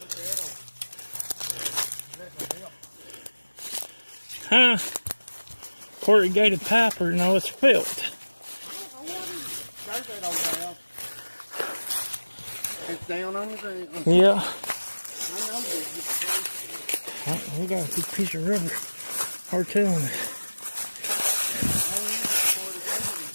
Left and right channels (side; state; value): both; inverted; correlation -1.00